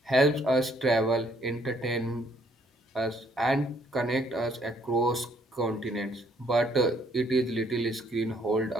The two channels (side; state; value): both; normal; correlation 0.66